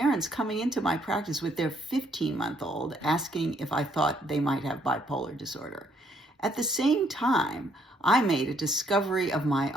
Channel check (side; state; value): both; normal; correlation 0.69